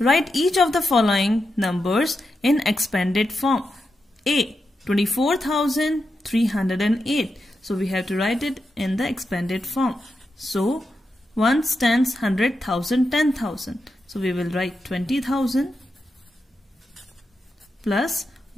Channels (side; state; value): both; normal; correlation 0.87